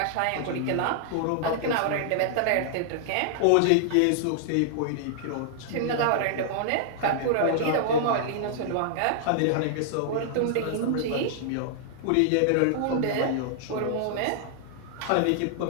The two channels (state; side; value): different; both; correlation -0.01